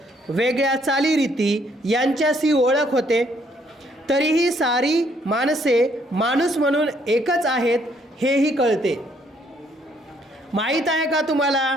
वेगळ्या चालीरीती यांच्याशी ओळख होते. तरीही सारी माणसे माणूस म्हणून एकच आहेत हेही कळते. माहीत आहे का तुम्हाला,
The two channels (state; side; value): normal; both; correlation 0.68